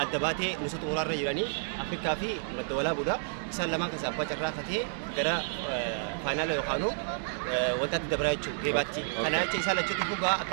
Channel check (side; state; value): left; silent; digital silence